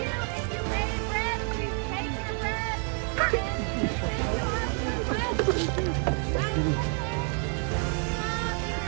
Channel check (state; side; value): quieter; left; 38.8 dB